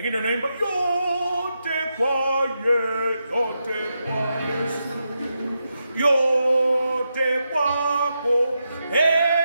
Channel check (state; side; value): inverted; both; correlation -0.86